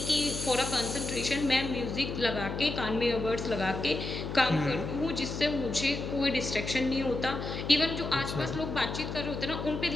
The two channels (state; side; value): noise; left; hum, 6 dB below the sound